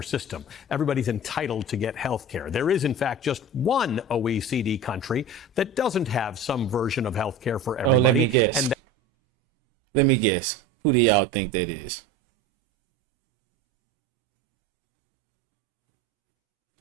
system. Everybody's entitled to get health care. There is, in fact, just one OECD country that doesn't have some version of health care for everybody. Oh, let me guess. Let me guess. Who do y'all think that is?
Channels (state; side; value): normal; both; correlation 0.32